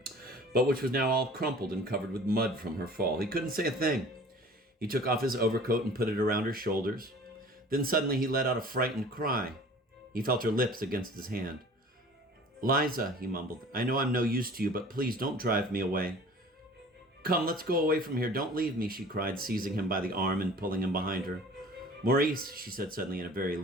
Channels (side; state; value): both; normal; correlation 0.45